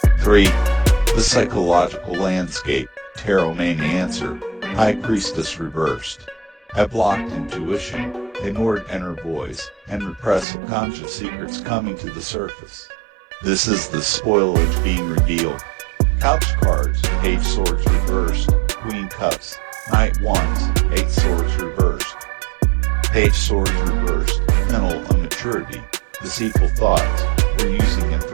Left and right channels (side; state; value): left; drops out; at 10.5 s